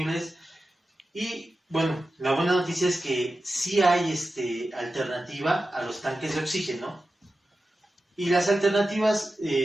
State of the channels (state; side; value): normal; both; correlation 0.93